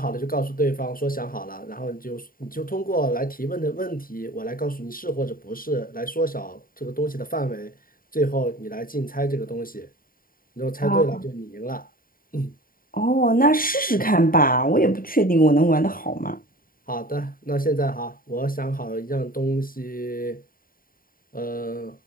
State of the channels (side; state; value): right; late; 0.41 ms